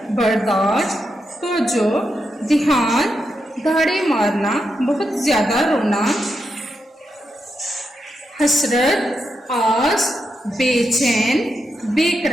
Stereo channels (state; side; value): normal; both; correlation 0.85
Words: برداشت، توجہ، دھیان، دھاڑے مارنا، بہت زیادہ رونا، حسرت، آس، بے چین، بے